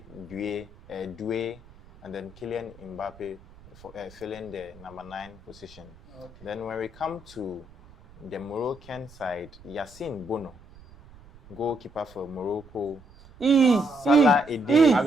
Doué, and then Kylian Mbappe filling the number 9 position. Okay. Then when we come to the Moroccan side, Yassine Bono, goalkeeper for Morocco. Salah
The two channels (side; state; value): right; noise; rumble, 23 dB below the sound